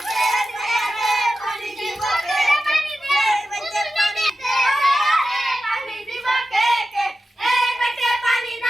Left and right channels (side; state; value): both; normal; correlation 0.93